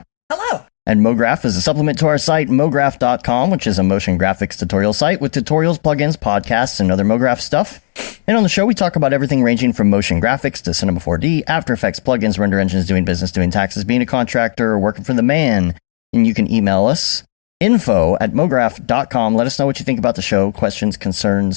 Hello. And Mograph is a supplement to our site, mograph.com, which is a motion graphics tutorial site with tutorials, plugins, podcasts, and other Mograph stuff. And on the show, we talk about everything ranging from motion graphics to Cinema 4D, After Effects, plugins, render engines, doing business, doing taxes, being a contractor, or working for the man. And you can email us, info@mograph.com. Let us know what you think about the show, questions,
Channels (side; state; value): right; silent; digital silence